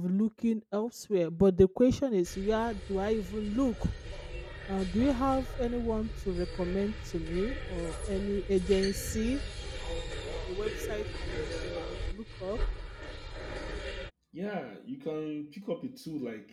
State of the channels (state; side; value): identical; both; correlation 1.00